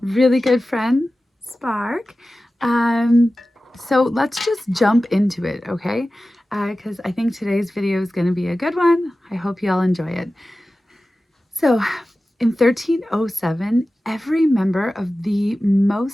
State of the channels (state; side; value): normal; both; correlation 0.95